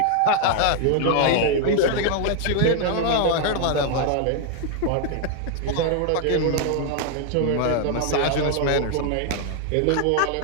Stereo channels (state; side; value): different; both; correlation 0.00